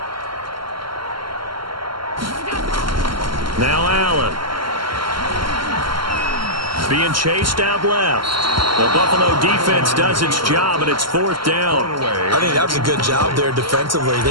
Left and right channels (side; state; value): left; late; 0.73 ms